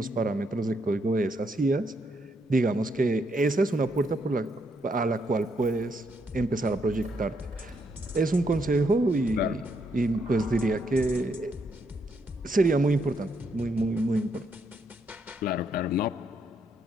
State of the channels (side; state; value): both; normal; correlation 0.76